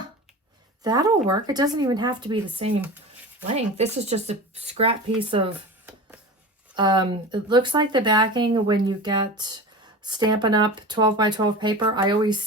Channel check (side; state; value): both; normal; correlation 0.31